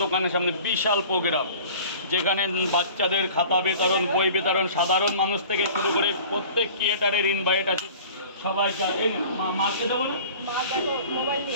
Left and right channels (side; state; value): both; inverted; correlation -0.44